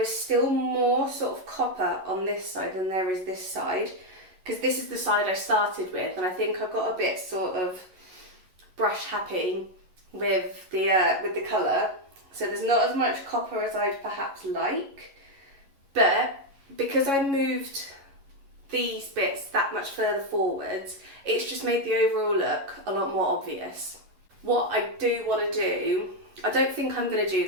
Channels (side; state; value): left; late; 11 ms